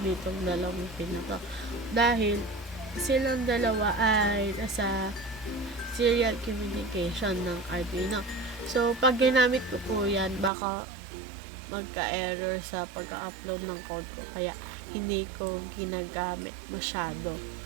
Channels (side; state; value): left; drops out; at 10.5 s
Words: dalawang pin na to. Dahil silang dalawa ay nasa serial communication ng Arduino. So, pag ginamit ko po yan, baka magka-error sa pagka-upload ng code ko. Kaya, hindi ko ginagamit masyado.